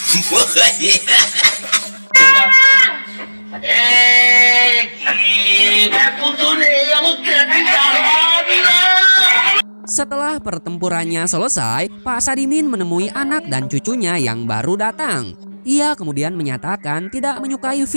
Setelah pertempurannya selesai, Pak Sadimin menemui anak dan cucunya yang baru datang. Ia kemudian menyatakan tidak menyukai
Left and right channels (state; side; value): inverted; both; correlation -1.00